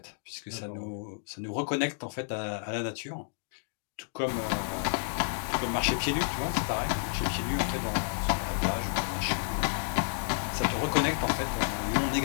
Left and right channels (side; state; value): right; silent; digital silence